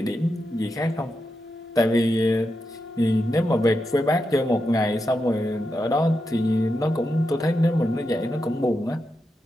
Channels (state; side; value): normal; both; correlation 0.87